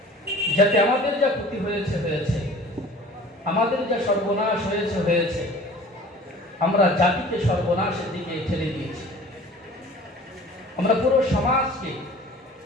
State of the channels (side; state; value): both; normal; correlation 0.45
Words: যাতে আমাদের যা ক্ষতি হয়েছে, আমাদের যা সর্বনাশ হয়েছে, আমরা জাতিকে সর্বনাশের দিকে ঠেলে দিয়েছি। আমরা পুরো সমাজকে